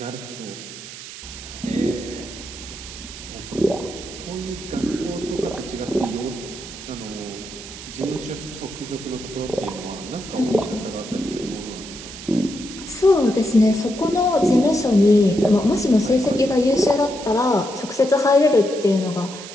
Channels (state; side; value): noise; right; hiss, 13 dB below the sound